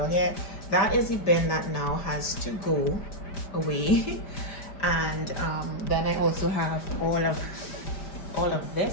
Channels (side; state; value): right; late; 5.0 ms